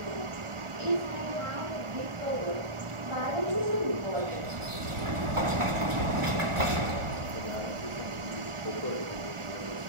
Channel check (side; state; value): left; late; 1.4 ms